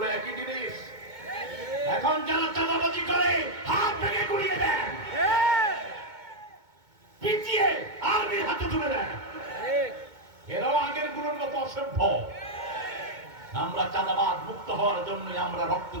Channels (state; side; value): late; left; 2.2 ms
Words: একই জিনিস। এখন যারা চাঁদাবাজি করে হাত ভেঙে গুড়িয়ে দেন, পিটিয়ে আর্মির হাতে তুলে দেন। এরাও আগের গুলোর মতো অসভ্য। আমরা চাঁদাবাদ মুক্ত হওয়ার জন্য আমরা রক্ত